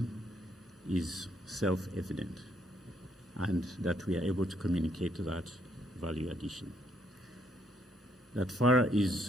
is self-evident and that we are able to communicate that value addition. That FARA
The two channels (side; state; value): both; normal; correlation 0.71